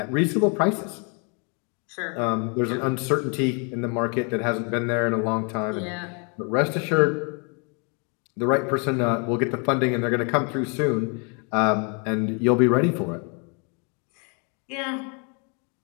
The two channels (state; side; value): quieter; right; 35.8 dB